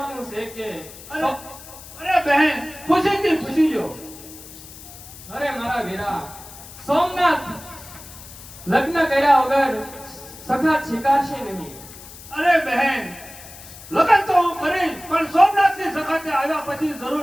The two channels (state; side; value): noise; left; hiss, 17 dB below the sound